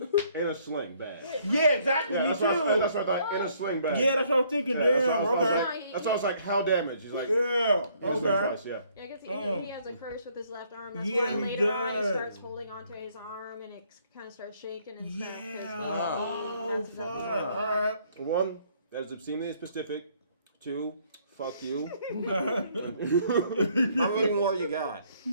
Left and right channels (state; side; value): inverted; both; correlation -0.65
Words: in a sling bag. Yeah, exactly. Yeah, me that's too. what I thought. In a sling bag. Yeah, that's what I was thinking. Yeah, Damn. Okay. that's why I was like, how damaged? He's like, Yeah. his Okay. advice, yeah. Yeah, I guess he has a curse with his left arm. That's Yeah, why he later on he does. starts holding onto his arm and it kind of starts shaking and stuff. 'cause Yeah. Oh that's fuck. something. All right. 1, that is obscenely specific. 2, fuck you. How many more you got?